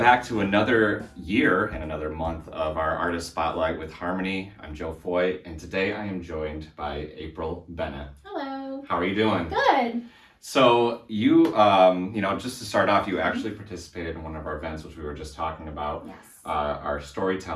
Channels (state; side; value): identical; both; correlation 1.00